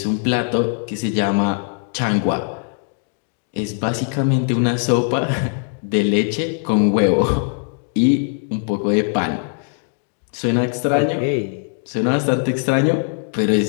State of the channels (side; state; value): right; silent; 55 dB below the other